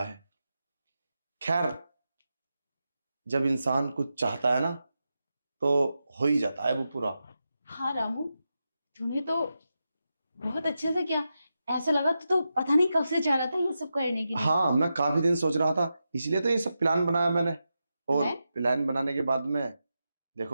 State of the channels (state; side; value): inverted; both; correlation -0.89